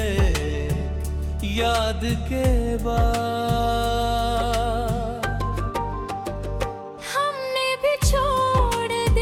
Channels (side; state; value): both; identical; correlation 1.00